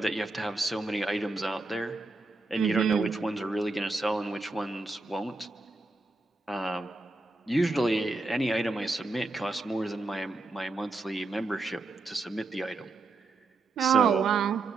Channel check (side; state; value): left; quieter; 3.4 dB